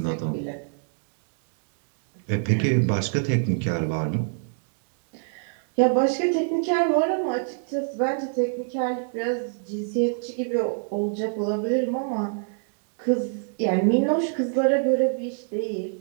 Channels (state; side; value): silent; left; digital silence